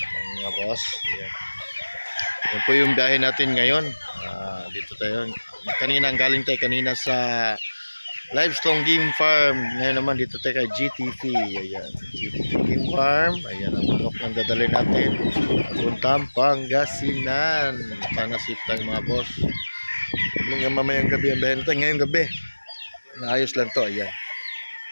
mga boss. Ayan. Yan po yung biyahe natin ngayon. Dito tayo. Kanina, galing tayo kanina sa Livestrong Game Farm. Ngayon naman dito tayo kay GTP. Ayan. GTP Game Farm. Ayan ang manok ng dadalhin natin. Papuntang Pangasinan. Pangasip tayo mga boss. Hanggang mamayang gabi ang biyahe natin. Ngayong gabi. Naayos lang to. Ayan.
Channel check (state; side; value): inverted; both; correlation -1.00